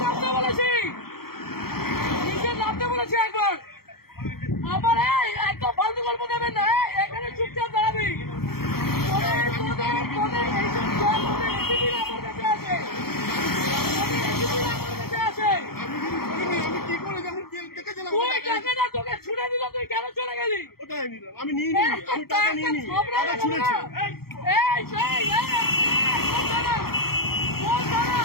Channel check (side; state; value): right; late; 0.94 ms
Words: নামতে বলেছি, নিচে নামতে বলেছি একবার। আমার একদম ফালতু গল্প দেবেন না, এখানে চুপচাপ দাঁড়াবি। তোদের এইসব এসিপিরা আমার কাছে আছে, এসিপিরা আমার কাছে আছে। আমি কি করে যেমন দেখেছিলাম তুই টাকা না, তোকে ছুড়ে দিল, তুই কেন চলে গেলি? ওটাই নিলাম, আমি নিয়ে নিই, আমি টাকা নিয়ে নিই, টাকা ছুঁড়েছি।